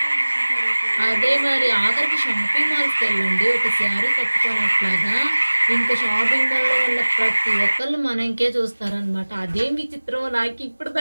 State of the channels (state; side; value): inverted; both; correlation -1.00